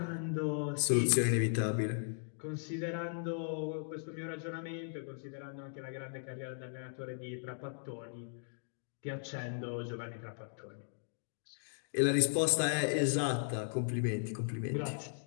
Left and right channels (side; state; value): right; silent; digital silence